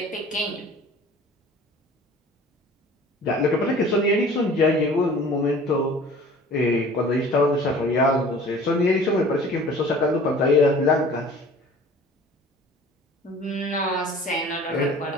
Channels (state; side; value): normal; both; correlation 0.46